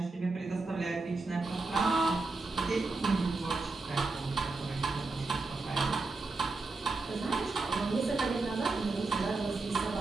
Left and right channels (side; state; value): left; quieter; 3.6 dB